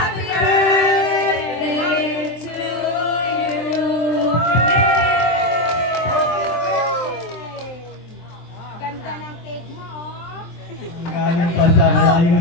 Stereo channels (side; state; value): right; late; 23 ms